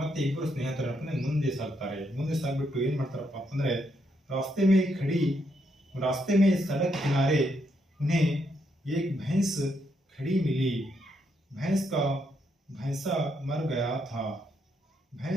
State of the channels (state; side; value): normal; both; correlation 0.77